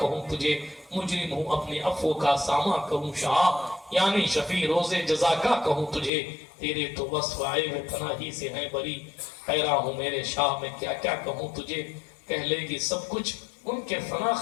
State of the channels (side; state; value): right; drops out; at 6.1 s